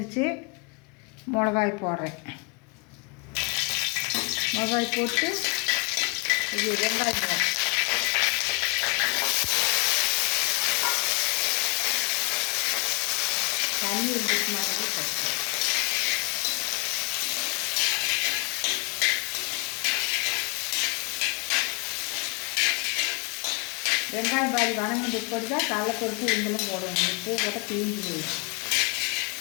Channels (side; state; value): right; quieter; 30.5 dB